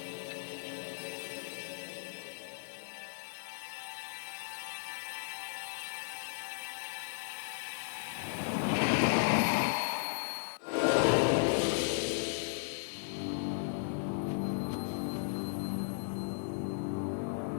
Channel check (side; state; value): right; silent; digital silence